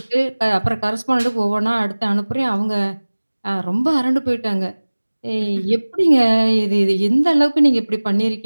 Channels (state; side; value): inverted; both; correlation -1.00